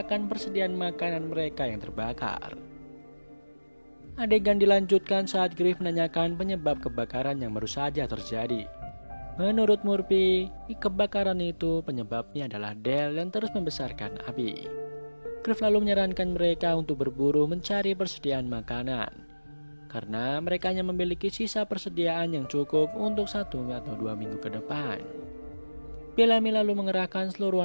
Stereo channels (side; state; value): both; inverted; correlation -1.00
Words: persediaan makanan mereka yang terbakar. Adegan dilanjutkan saat Griff menanyakan penyebab kebakaran yang baru saja terjadi. Menurut Murphy, kebakaran itu penyebabnya adalah Del yang terus membesarkan api. Griff lalu menyarankan mereka untuk berburu mencari persediaan makanan, karena mereka hanya memiliki sisa persediaan yang cukup untuk 1 atau 2 minggu ke depan. Bellamy lalu mengerahkan seluruh